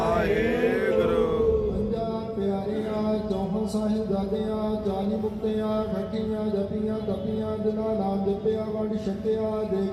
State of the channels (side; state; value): both; identical; correlation 1.00